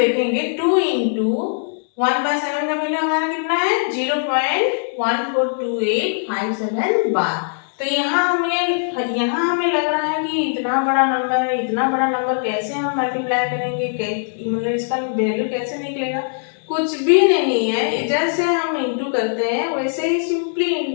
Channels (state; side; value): silent; right; digital silence